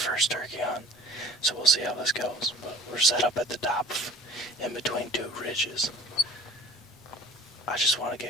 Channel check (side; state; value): both; normal; correlation 0.47